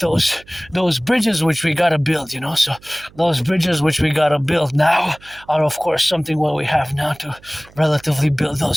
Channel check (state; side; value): noise; right; hum, 26 dB below the sound